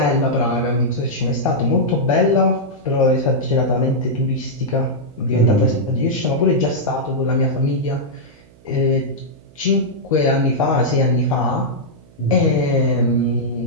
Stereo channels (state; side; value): noise; right; hum, 27 dB below the sound